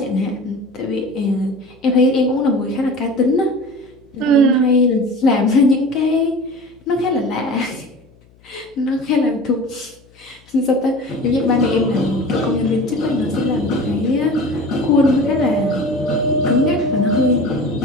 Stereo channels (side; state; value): left; noise; hum, 29 dB below the sound